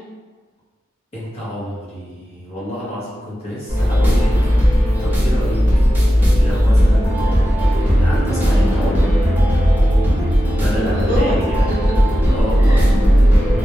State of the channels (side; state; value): both; normal; correlation 0.93